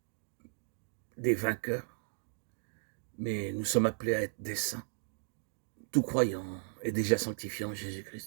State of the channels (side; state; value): left; silent; 54 dB below the other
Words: des vainqueurs, mais nous sommes appelés à être des saints. Tout croyant est déjà sanctifié en